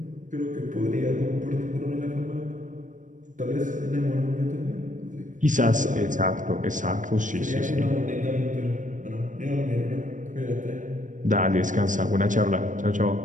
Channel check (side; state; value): left; late; 0.37 ms